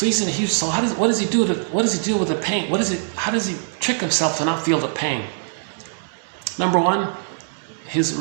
he's in a huge. So what does he do with the pain? How does he trick himself to not feel the pain? Number one, his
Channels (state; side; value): silent; left; digital silence